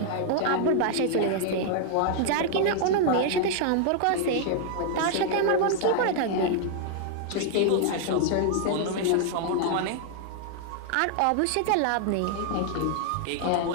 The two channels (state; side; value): different; both; correlation -0.01